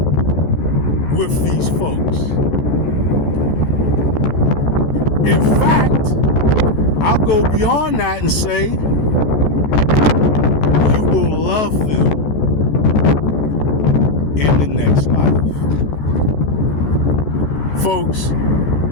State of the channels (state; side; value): late; right; 14 ms